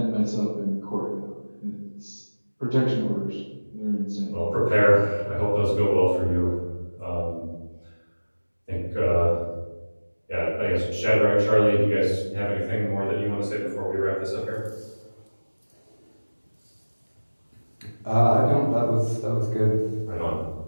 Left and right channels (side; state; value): both; inverted; correlation -1.00